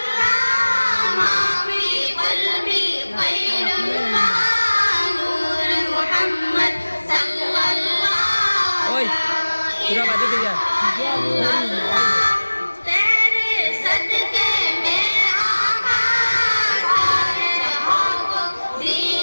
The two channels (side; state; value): both; inverted; correlation -1.00